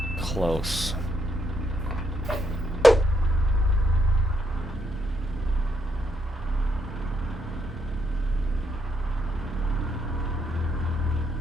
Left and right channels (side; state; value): both; normal; correlation 0.77